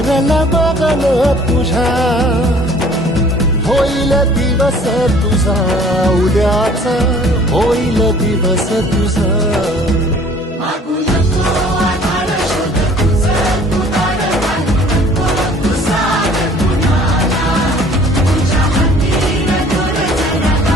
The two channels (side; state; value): both; normal; correlation 0.53